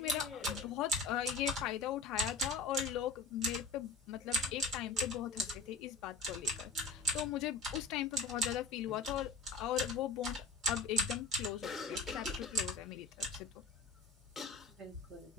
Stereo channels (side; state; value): right; quieter; 4.0 dB